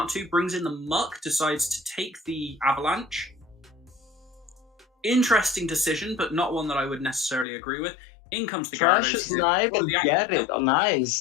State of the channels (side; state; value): right; drops out; at 7.5 s